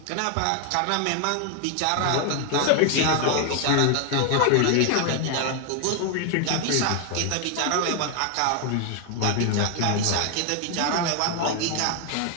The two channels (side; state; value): both; different; correlation 0.00